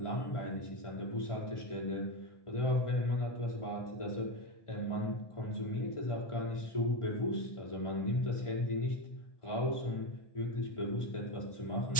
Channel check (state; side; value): late; right; 1.4 ms